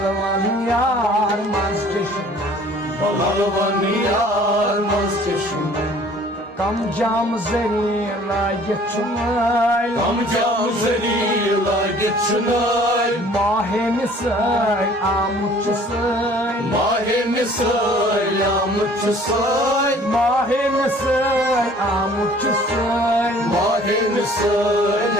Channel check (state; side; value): normal; both; correlation 0.53